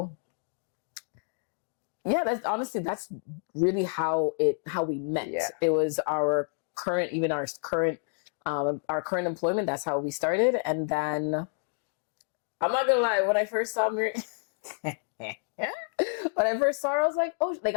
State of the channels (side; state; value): right; silent; 58 dB below the other